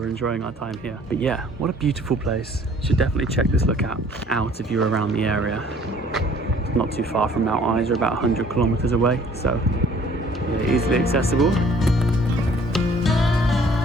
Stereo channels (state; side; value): normal; both; correlation 0.56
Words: enjoying our time here. But yeah, what a beautiful place. You should definitely check this lookout out if you're around the area. It's not too far from Mount Isa, about 100 kilometers away, so yeah, easily accessible.